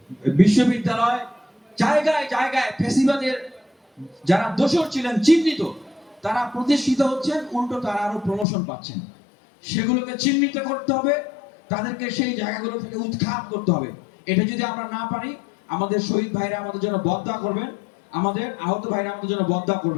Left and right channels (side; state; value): right; drops out; at 8.5 s